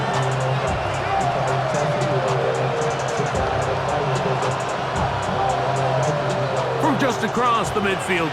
From just across the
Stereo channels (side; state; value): both; identical; correlation 1.00